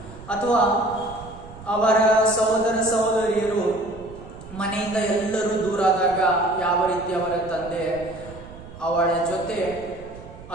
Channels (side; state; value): right; noise; rumble, 17 dB below the sound